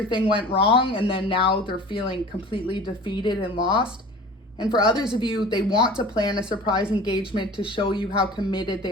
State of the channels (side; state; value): both; normal; correlation 0.41